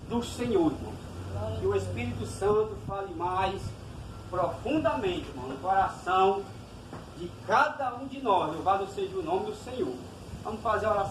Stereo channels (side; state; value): both; identical; correlation 1.00